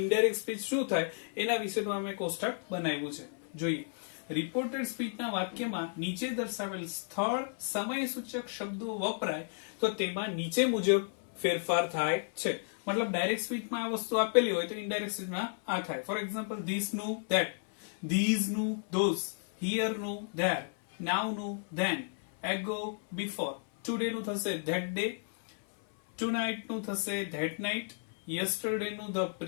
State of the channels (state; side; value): silent; right; 56 dB below the other